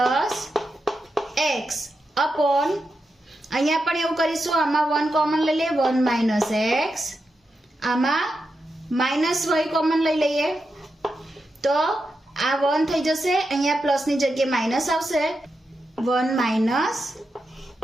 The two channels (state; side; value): normal; both; correlation 0.87